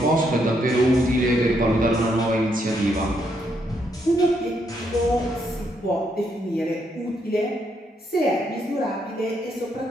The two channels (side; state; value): both; normal; correlation 0.76